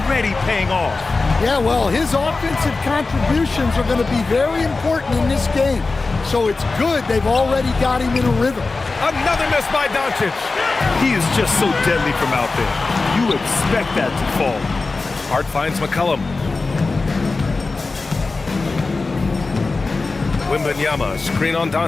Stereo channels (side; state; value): right; quieter; 3.8 dB